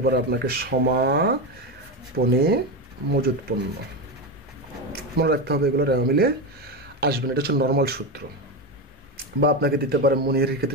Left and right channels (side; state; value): both; normal; correlation 0.15